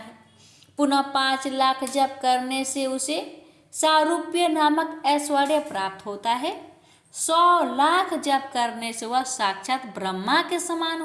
पुनः 5 लाख जप करने से उसे सारूप्य नामक ऐश्वर्य प्राप्त होता है। 100 लाख जप करने से वह साक्षात ब्रह्मा के समान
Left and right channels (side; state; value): both; identical; correlation 1.00